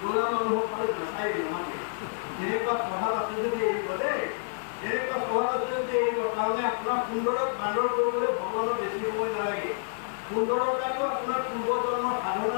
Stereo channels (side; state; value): right; silent; digital silence